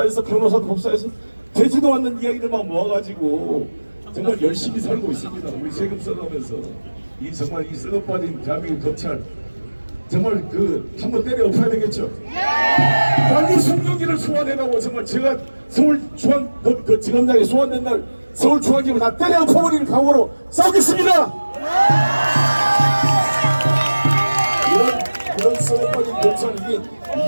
변호사도 복사해서 되지도 않는 이야기들만 모아가지고 정말 열심히 살고 있습니다. 우리 세금 써가면서 이 정말 이 썩어빠진 대한민국 검찰 정말 한번 때려 엎어야 되겠죠. 빨리 송영기를 소환해가고 정말 제가 서울중앙 지검장에 소환된 날 서울중앙지검을 다 때려 엎어버리는 각오로 싸우겠습니다. 이런 썩어빠진 검찰이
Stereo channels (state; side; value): inverted; both; correlation -1.00